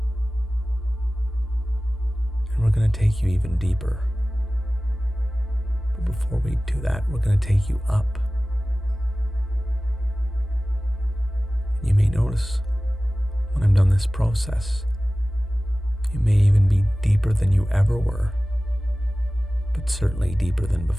And we're going to take you even deeper. But before we do that, we're going to take you up. And you may notice when I'm done this process, you may even be deeper than you ever were, but certainly deeper than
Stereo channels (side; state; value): both; normal; correlation 0.97